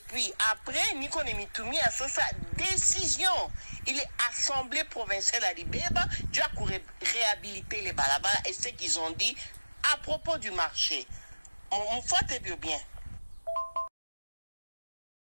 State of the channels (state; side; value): inverted; both; correlation -1.00